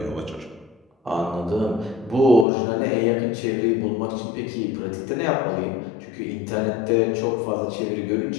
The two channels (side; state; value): right; drops out; at 2.5 s